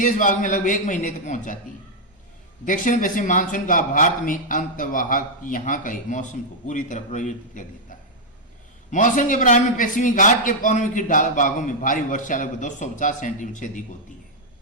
भाग में लगभग 1 महीने तक पहुंच जाती है। दक्षिण पश्चिम मानसून का भारत में अंतवाहक यहाँ का मौसम को पूरी तरह परिवर्तित कर देता है। मौसम के प्रारंभ में पश्चिमी घाट के पवनों की भागों में भारी वर्षा लगभग 250 सेंटीमीटर से अधिक होती है।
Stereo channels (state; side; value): normal; both; correlation -0.03